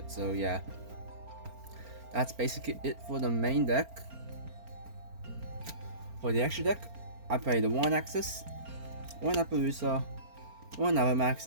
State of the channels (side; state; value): left; late; 4.4 ms